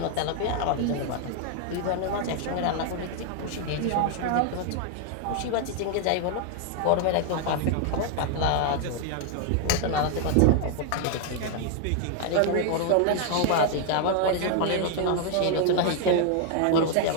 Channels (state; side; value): different; both; correlation 0.00